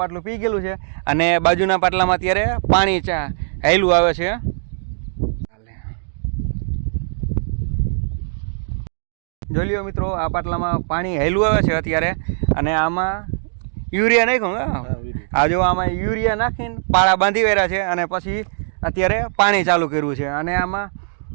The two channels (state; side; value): silent; left; digital silence